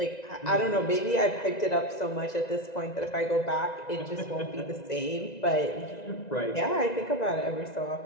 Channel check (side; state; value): right; late; 1.9 ms